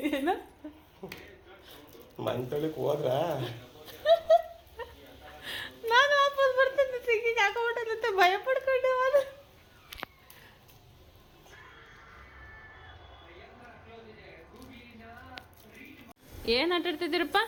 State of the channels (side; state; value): both; identical; correlation 1.00